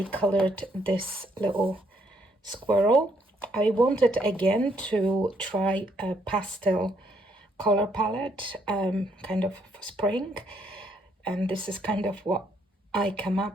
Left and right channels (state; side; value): normal; both; correlation 0.71